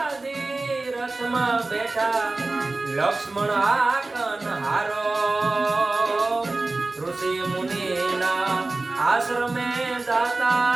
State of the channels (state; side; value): quieter; left; 3.2 dB